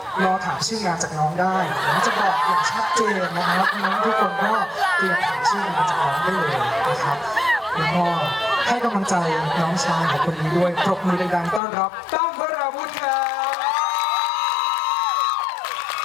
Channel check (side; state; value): right; drops out; at 11.6 s